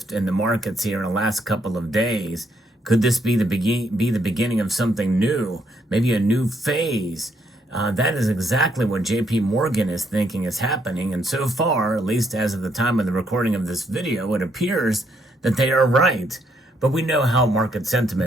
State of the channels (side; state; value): both; normal; correlation 0.73